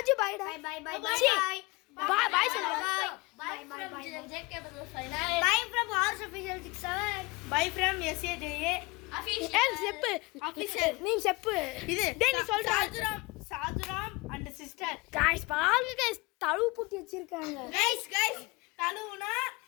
பை டா. Bye bye bye. Bye bye சொல்லுங்க. பை பை ஜேகே பதல் ஃபைனல். பை ஃப்ரம் ஆர்ஸ் official 67. Bye from SAJ official. ஏய் செப்பு ஆபீஷியல் நீ செப்பு. இது டேய் நீ சொல்ற. Sadhuram and sister. गाइस பாருங்க गाइस தழுவு பூட்டி வச்சிருக்காங்க. गाइस तलुना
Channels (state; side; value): quieter; right; 25.0 dB